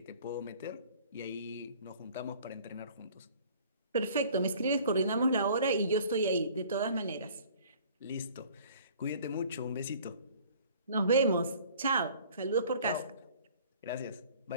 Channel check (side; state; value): both; inverted; correlation -0.51